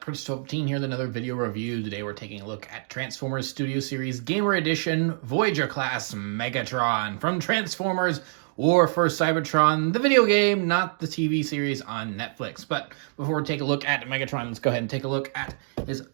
Prince12 here with another video review. Today we're taking a look at Transformers Studio Series Gamer Edition Voyager class Megatron from Transformers War for Cybertron, the video game, not the TV series on Netflix. But before we take a look at Megatron, let's go ahead and take a look at his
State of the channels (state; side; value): silent; left; digital silence